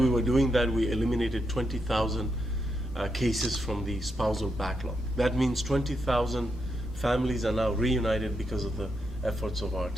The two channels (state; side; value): normal; both; correlation 0.82